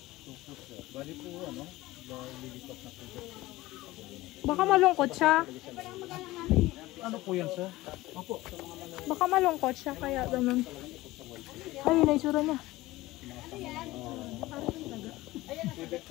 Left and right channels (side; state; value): right; quieter; 18.3 dB